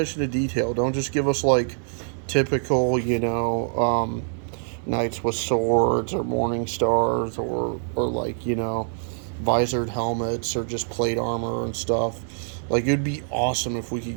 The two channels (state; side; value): silent; left; 58 dB below the other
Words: to detail. Don't just give us like typical, knights with swords or morning stars or like, visored helmets or just plate armor and stuff. Like, it'd be awesome if we could